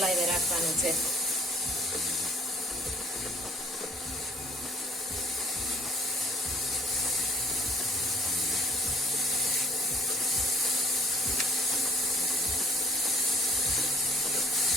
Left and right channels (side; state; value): both; normal; correlation 0.56